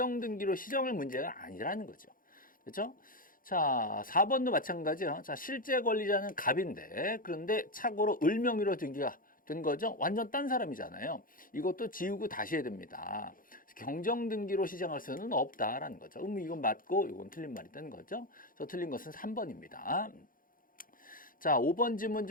시정할 문제가 아니라는 거죠. 그렇죠? 자, 4번도 마찬가지예요. 자, 실제 권리자는 갑인데 그런데 착오로 을명의로 등기가 된 거죠. 완전 딴 사람이잖아요. 이것도 지우고 다시 해야 됩니다. 경정등기로 시정할 수는 없다라는 거죠. 이건 맞고 이건 틀린 말이라는 거죠. 그래서 틀린 것은 3번입니다. 자, 5번 지문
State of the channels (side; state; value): right; late; 0.40 ms